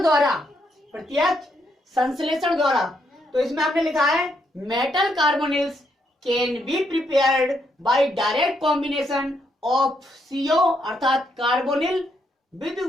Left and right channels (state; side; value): normal; both; correlation 0.76